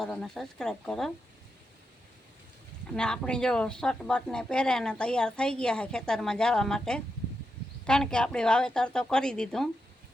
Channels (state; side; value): normal; both; correlation 0.86